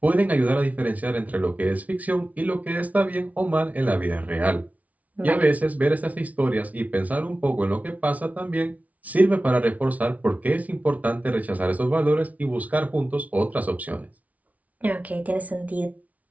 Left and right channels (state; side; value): late; left; 0.070 ms